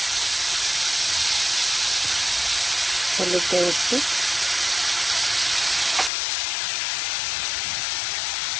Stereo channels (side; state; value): right; drops out; at 6.1 s